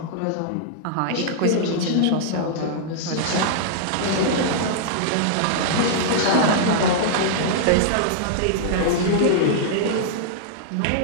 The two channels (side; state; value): both; different; correlation -0.01